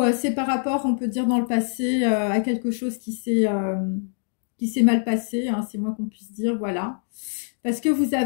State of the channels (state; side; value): silent; right; 58 dB below the other